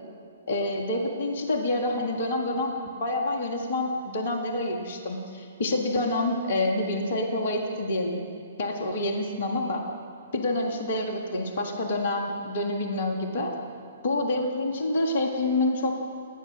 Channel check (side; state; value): both; inverted; correlation -0.56